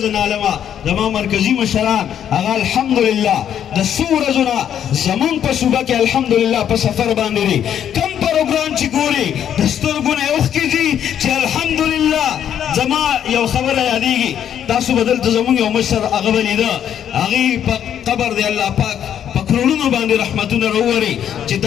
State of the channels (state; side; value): quieter; right; 9.5 dB